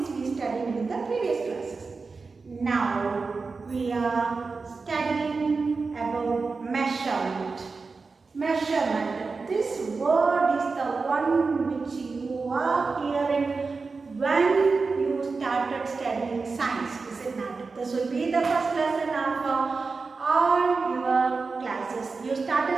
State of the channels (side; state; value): left; quieter; 4.3 dB